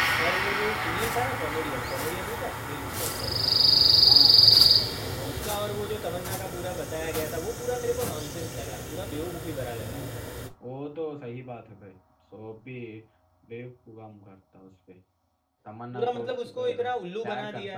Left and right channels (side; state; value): both; identical; correlation 1.00